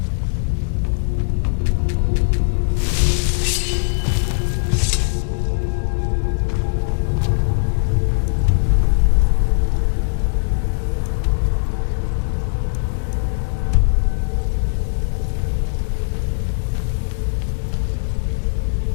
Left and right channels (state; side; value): silent; right; digital silence